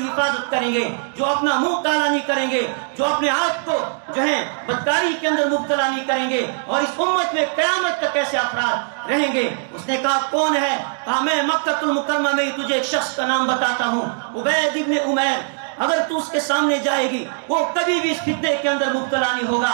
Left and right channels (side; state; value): left; silent; 65 dB below the other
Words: کریں گے، جو اپنا منہ کالا نہیں کریں گے، جو اپنے آپ کو جو ہے بدکاری کے اندر مبتلا نہیں کریں گے، اور اس امت میں قیامت تک ایسے افراد رہیں گے۔ اس نے کہا کون ہے؟ کہا میں مکہ المکرمہ میں تجھے ایک شخص کا نام بتاتا ہوں، عبید ابن عمیر، اگر تو اس کے سامنے جائے گی وہ کبھی بھی اس فتنے کے اندر مبتلا نہیں ہوگا۔